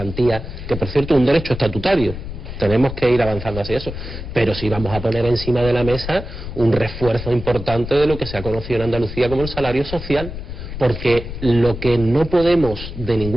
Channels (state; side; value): noise; left; rumble, 9 dB below the sound